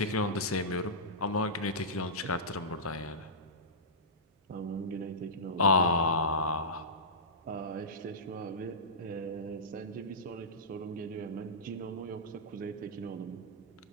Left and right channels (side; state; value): both; normal; correlation -0.18